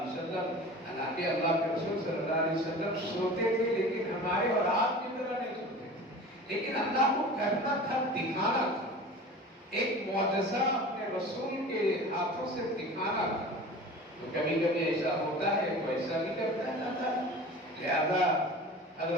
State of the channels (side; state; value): both; normal; correlation 0.37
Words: وسلم، حالانکہ اللہ کے رسول صلی اللہ علیہ وسلم سوتے تھے لیکن ہمارے اور آپ کی طرح نہیں سوتے تھے، لیکن اللہ کو کرنا تھا، دکھانا تھا، ایک معجزہ اپنے رسول کے ہاتھوں سے دکھانا تھا۔ تو کبھی کبھی ایسا ہوتا ہے وہ ایسا بھی کرتا ہے نہ تھا، لہذا